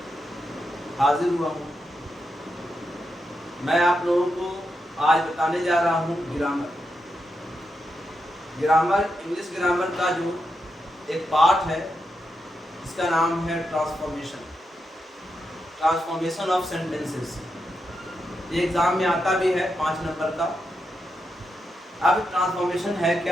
हाजिर हुआ हूँ। मैं आप लोगों को आज बताने जा रहा हूँ ग्रामर इंग्लिश ग्रामर का जो एक पार्ट है, इसका नाम है ट्रांसफॉर्मेशन ऑफ सेंटेंसेस। ये एग्जाम में आता भी है 5 नंबर का। अब ट्रांसफॉर्मेशन है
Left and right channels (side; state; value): both; normal; correlation 0.85